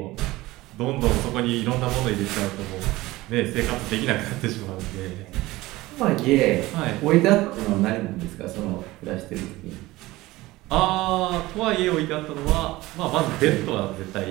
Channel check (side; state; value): left; quieter; 18.9 dB